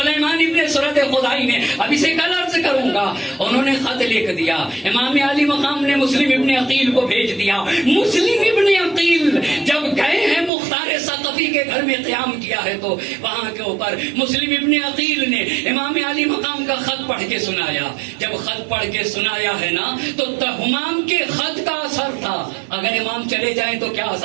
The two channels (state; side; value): drops out; left; at 10.5 s